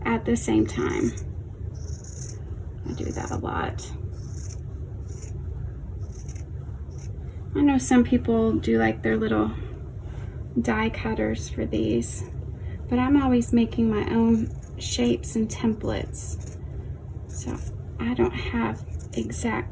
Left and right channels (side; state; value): both; identical; correlation 1.00